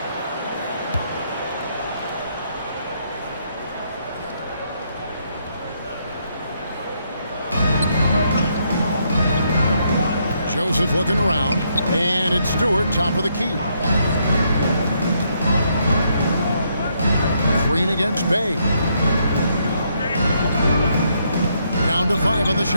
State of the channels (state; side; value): inverted; both; correlation -0.74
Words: Joseph looking around, and it's Stewart, top of the key. Green against Bay. Down to 5 on the